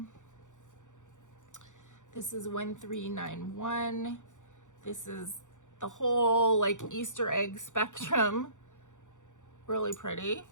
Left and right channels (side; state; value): right; late; 0.86 ms